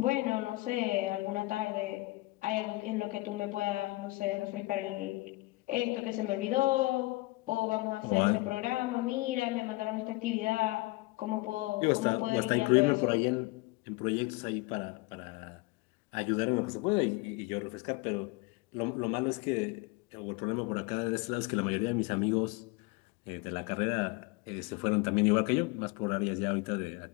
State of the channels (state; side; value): quieter; right; 22.3 dB